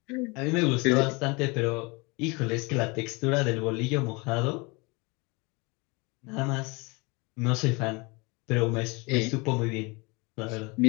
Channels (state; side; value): quieter; right; 27.4 dB